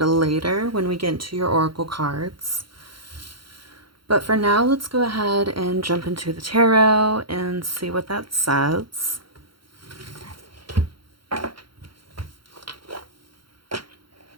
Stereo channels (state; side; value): late; left; 0.73 ms